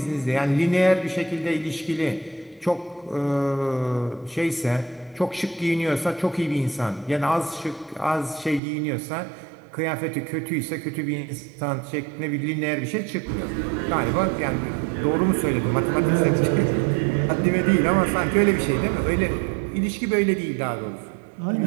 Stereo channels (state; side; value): drops out; left; at 8.6 s